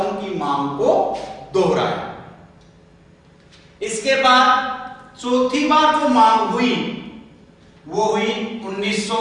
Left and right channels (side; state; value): both; identical; correlation 1.00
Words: की मांग को दोहराया। इसके बाद चौथी बार जो मांग हुई वो हुई